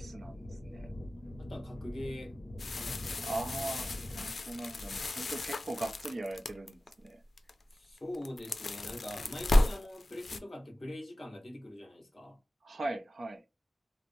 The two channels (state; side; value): normal; both; correlation 0.96